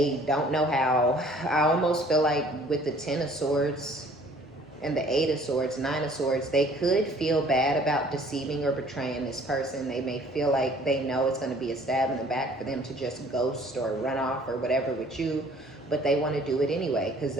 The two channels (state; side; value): normal; both; correlation 0.55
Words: don't know how. I almost feel like with the Ten of Swords and the Eight of Swords, Nine of Swords, they could feel bad about deceiving or betraying this person. They may feel like they know it's going to be a stab in the back for them to just ghost or run off or whatever with you, but they want to do it anyway because